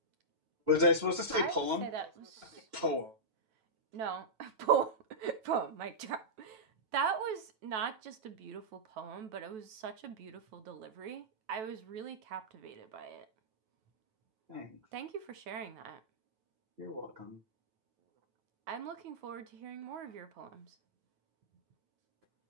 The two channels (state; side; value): late; left; 9.2 ms